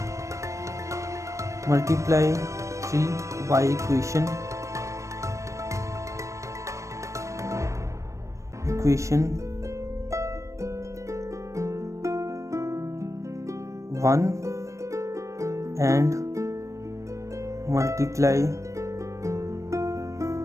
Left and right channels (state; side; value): late; left; 0.15 ms